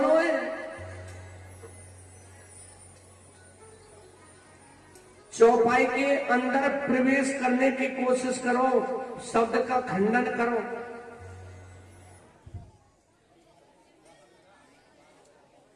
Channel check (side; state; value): both; identical; correlation 1.00